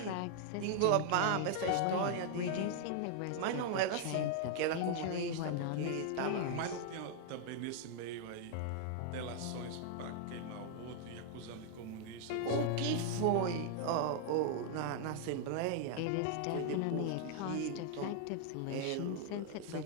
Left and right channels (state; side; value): different; both; correlation -0.01